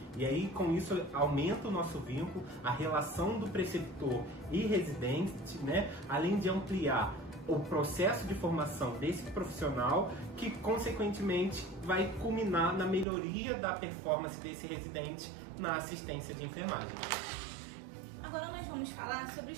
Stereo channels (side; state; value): left; drops out; at 13.1 s